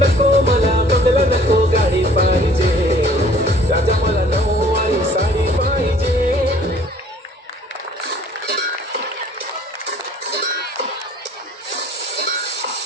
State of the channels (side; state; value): both; normal; correlation 0.54